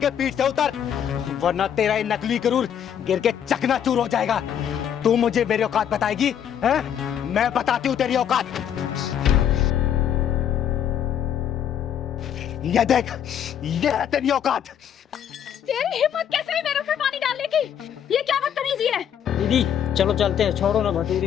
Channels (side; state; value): right; quieter; 9.2 dB